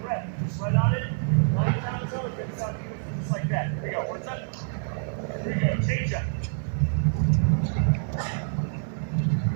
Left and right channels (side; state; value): left; silent; digital silence